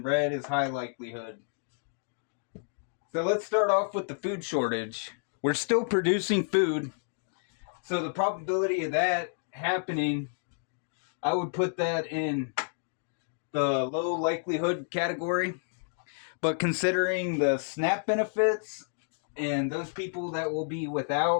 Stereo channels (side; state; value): right; silent; digital silence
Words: red is high likelihood. So let's start off with the food shortage. We're still producing food, so the probability of that happening, I would put that in the low likelihood category. But considering the SNAP benefits and those people that will be